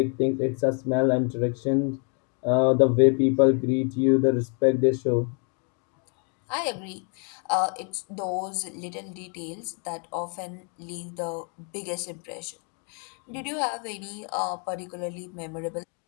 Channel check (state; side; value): quieter; right; 38.9 dB